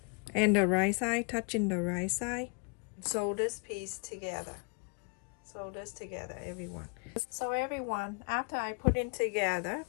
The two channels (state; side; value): quieter; right; 34.8 dB